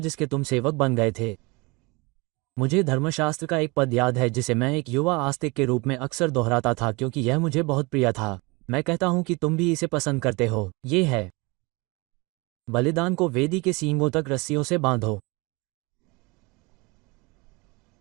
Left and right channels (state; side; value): quieter; left; 26.3 dB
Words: तुम सेवक बन गए थे। मुझे धर्मशास्त्र का एक पद याद है जिसे मैं एक युवा आस्तिक के रूप में अक्सर दोहराता था क्योंकि यह मुझे बहुत प्रिय था। मैं कहता हूं कि तुम भी इसे पसंद करते हो। ये है, बलिदान को वेदी के सींगों तक रस्सियों से बांधो।